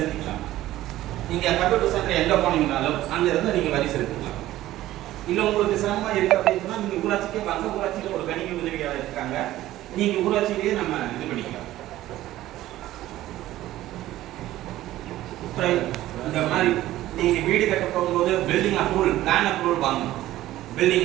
நீங்கள் கம்ப்யூட்டர் சென்டர் எங்கே போனீங்கனாலும் அங்கேருந்து நீங்கள் வரி செலுத்திக்கலாம். இல்லை உங்களுக்கு சிரமமாக இருக்குது அப்படின்னு சொன்னால் நீங்கள் ஊராட்சிக்கே வாங்க. ஊராட்சியில் ஒரு கணினி உதவியாளர் இருக்காங்க. நீங்கள் ஊராட்சியிலேயே நம்ம இது பண்ணிக்கலாம். இந்த மாதிரி நீங்கள் வீடு கட்ட போகும்போது பில்டிங் அப்ரூவல், பிளான் அப்ரூவல் வாங்கணும்.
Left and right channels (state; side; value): quieter; left; 14.9 dB